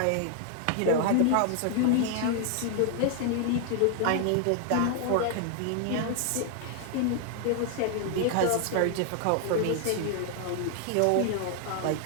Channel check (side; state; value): both; different; correlation 0.00